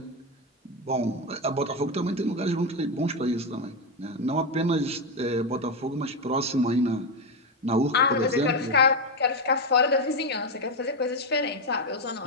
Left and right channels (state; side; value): normal; both; correlation 0.09